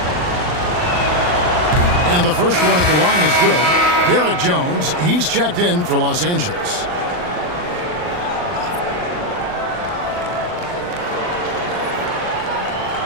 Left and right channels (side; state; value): left; late; 39 ms